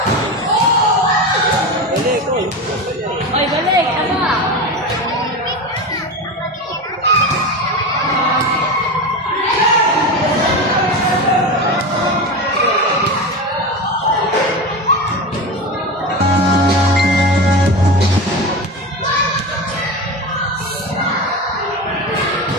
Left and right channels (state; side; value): normal; both; correlation 0.23